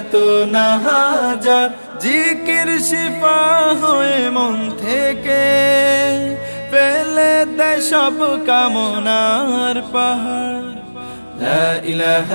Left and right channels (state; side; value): inverted; both; correlation -1.00